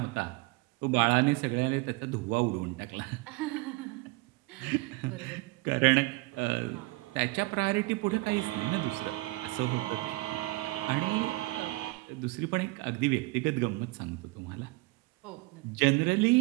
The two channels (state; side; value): quieter; left; 22.8 dB